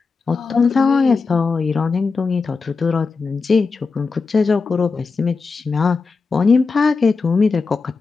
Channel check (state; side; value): quieter; right; 4.6 dB